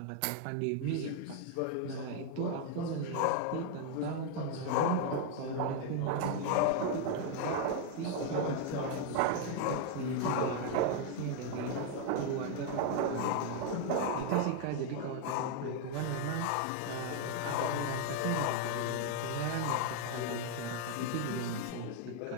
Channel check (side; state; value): both; different; correlation 0.00